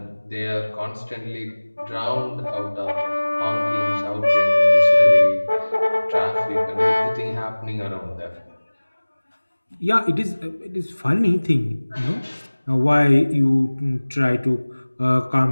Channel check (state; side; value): inverted; both; correlation -1.00